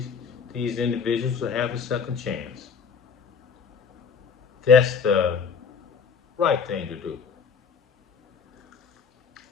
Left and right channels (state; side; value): quieter; right; 6.1 dB